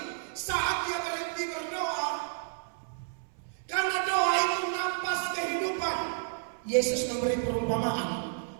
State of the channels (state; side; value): silent; left; 57 dB below the other